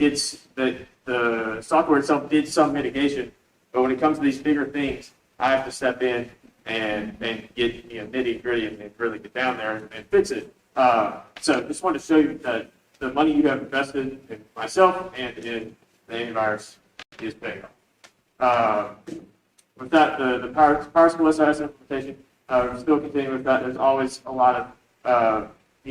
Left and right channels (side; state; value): both; identical; correlation 1.00